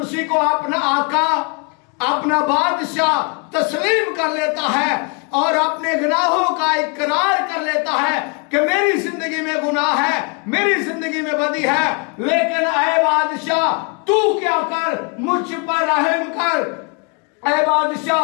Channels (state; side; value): quieter; right; 34.1 dB